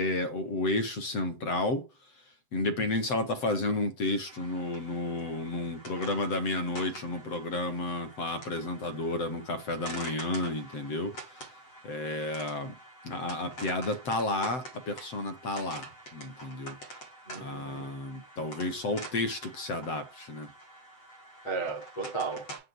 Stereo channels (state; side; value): late; right; 7.8 ms